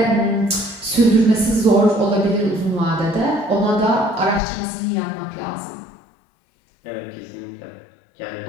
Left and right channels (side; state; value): right; drops out; at 4.4 s